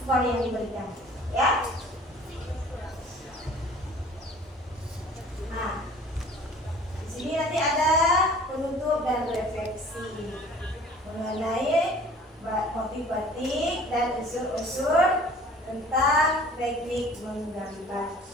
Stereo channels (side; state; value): both; normal; correlation 0.48